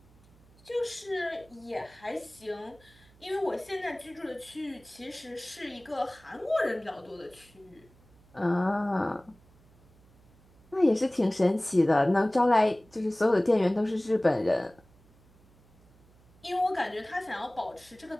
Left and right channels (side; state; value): right; noise; hum, 28 dB below the sound